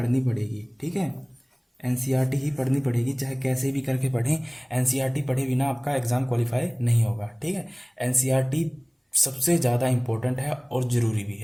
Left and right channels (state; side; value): identical; both; correlation 1.00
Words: पड़ेगी, ठीक है। एनसीईआरटी ही पढ़नी पड़ेगी, चाहे कैसे भी करके पढ़ें। एनसीईआरटी पढ़े बिना आपका एग्जाम क्वालिफाई नहीं होगा, ठीक है। एनसीईआरटी सबसे ज़्यादा इंपॉर्टेंट है और ज़रूरी भी